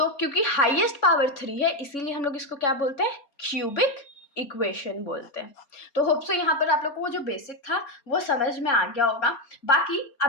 क्योंकि हाईएस्ट पावर 3 है इसीलिए हम लोग इसको क्या बोलते हैं, क्यूबिक इक्वेशन बोलते हैं। तो होप सो यहाँ पर आप लोग को वो जो बेसिक था वो समझ में आ गया होगा। बाकी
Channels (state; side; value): late; right; 4.3 ms